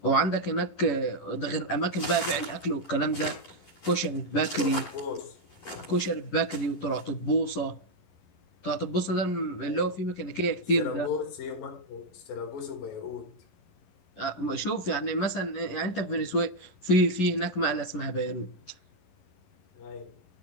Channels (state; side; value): late; right; 11 ms